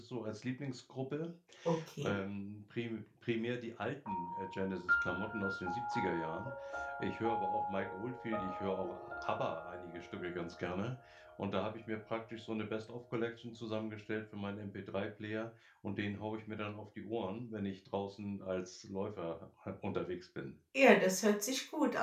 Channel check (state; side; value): identical; both; correlation 1.00